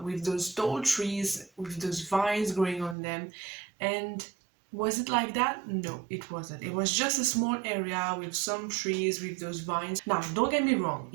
with those tall trees, with those vines growing on them, and was it like that? No, it wasn't. It was just a small area with some trees with those vines. Now, don't get me wrong,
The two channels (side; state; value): left; drops out; at 3.0 s